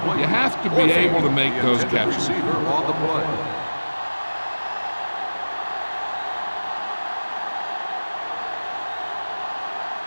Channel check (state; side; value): inverted; both; correlation -1.00